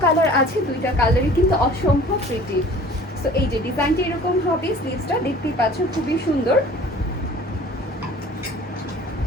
কালার আছে, দুইটা কালারই কিন্তু অসম্ভব প্রিটি। সো এই যে ডিজাইনটা এরকম হবে, স্লিভসটা দেখতেই পাচ্ছ খুবই সুন্দর।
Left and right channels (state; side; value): normal; both; correlation 0.47